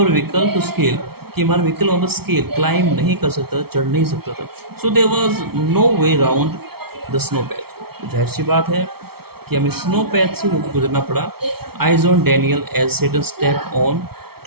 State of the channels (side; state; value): left; late; 0.95 ms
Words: vehicle to scale, कि हमारा vehicle on the scale climb नहीं कर सकता, चढ़ नहीं सकता था। So there was no way round the snow patch, तो जाहिर सी बात है कि हमें स्नो पैच से होकर गुजरना पड़ा। Eyes on Daniel as Seton step on